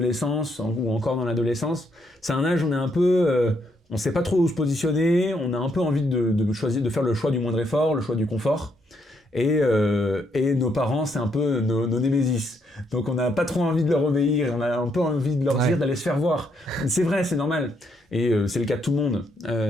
ou encore dans l'adolescence, c'est un âge où on est un peu, on sait pas trop où se positionner, on a un peu envie de choisir, de faire le choix du moindre effort, le choix du confort, et nos parents c'est un peu nos némésis. Donc on n'a pas trop envie de leur obéir, on a un peu envie de leur dire d'aller se faire voir. C'est vrai, c'est normal. Et c'est le cas de tout le monde,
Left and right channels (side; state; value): both; normal; correlation 0.75